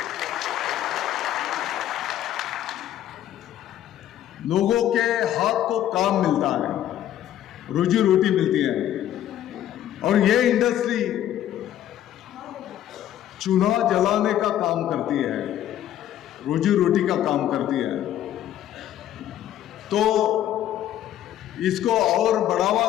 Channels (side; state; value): right; quieter; 11.8 dB